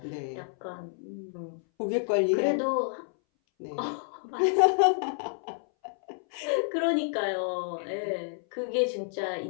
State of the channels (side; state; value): right; silent; 58 dB below the other